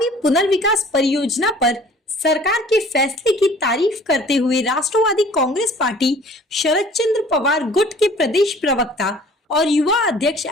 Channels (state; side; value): normal; both; correlation 0.51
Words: पुनर्विकास परियोजना पर सरकार के फैसले की तारीफ करते हुए राष्ट्रवादी कांग्रेस पार्टी शरद चंद्र पवार गुट के प्रदेश प्रवक्ता और युवा अध्यक्ष